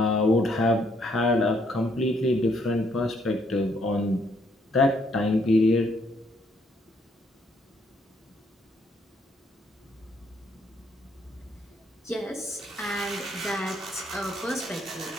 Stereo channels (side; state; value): both; normal; correlation 0.70